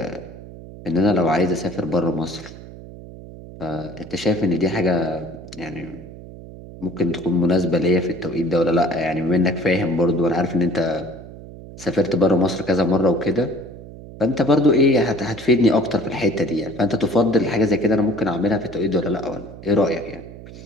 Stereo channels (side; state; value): right; noise; hum, 15 dB below the sound